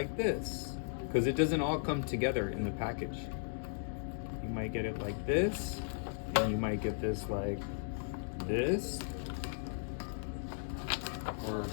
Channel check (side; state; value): right; silent; digital silence